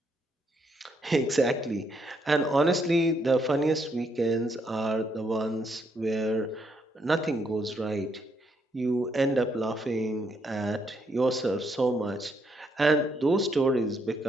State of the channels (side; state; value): both; normal; correlation 0.74